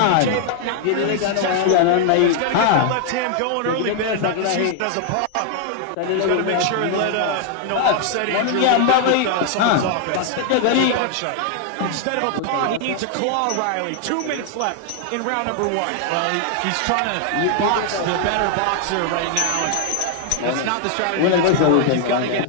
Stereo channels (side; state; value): both; different; correlation 0.00